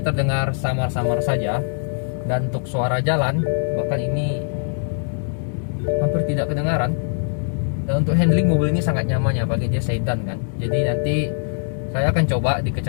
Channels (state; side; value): silent; right; digital silence